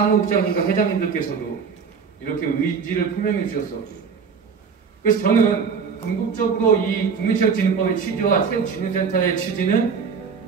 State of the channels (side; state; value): left; quieter; 5.9 dB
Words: 회장님들께서도 이렇게 의지를 표명해 주셨었고, 그래서 저는 궁극적으로 이 국민체육진흥법의 취지와 체육진흥센터의 취지는